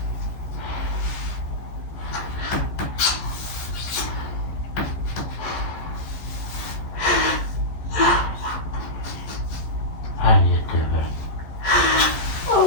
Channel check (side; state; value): right; late; 14 ms